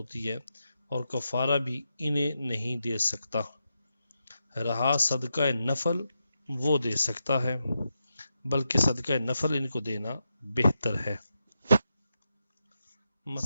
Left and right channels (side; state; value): both; inverted; correlation -0.87